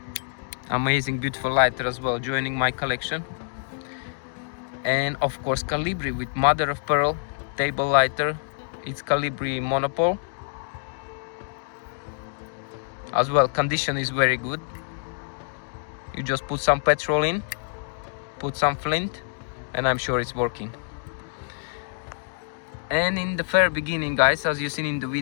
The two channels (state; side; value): silent; right; digital silence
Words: Amazing, beautiful lighter as well, joining my collection. And of course Calibri with mother of pearl table lighter. It's Calibri Monopole. As well, condition is very good. You just put some petrol in, put some flint, and I'm sure it's working. And in the very beginning, guys, as you seen in the